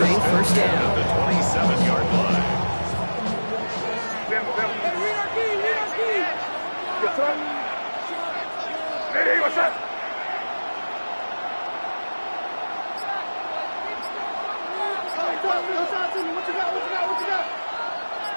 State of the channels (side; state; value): both; inverted; correlation -1.00